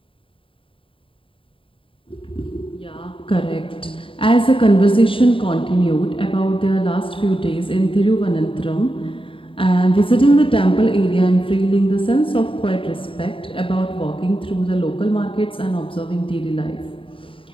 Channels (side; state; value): right; late; 0.25 ms